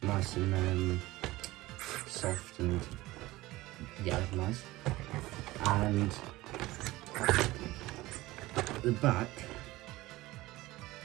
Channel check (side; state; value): left; quieter; 18.6 dB